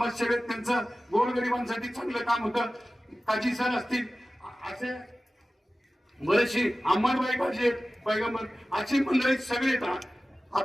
त्यांचं गोरगरिबांसाठी चांगलं काम होतं. काजी सर असतील, असे बरेचशी अंबाबाई काजी पैगंबर, अशी मंडळी सगळे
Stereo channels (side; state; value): both; normal; correlation 0.96